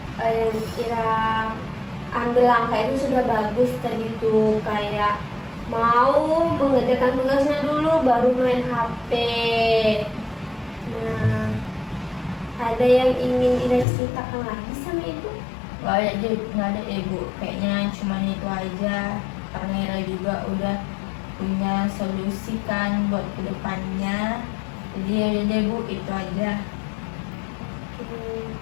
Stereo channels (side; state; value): right; drops out; at 13.9 s